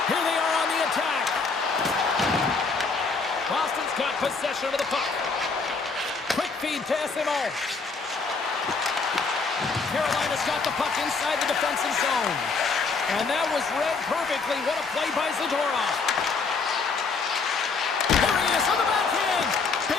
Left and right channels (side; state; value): right; quieter; 4.5 dB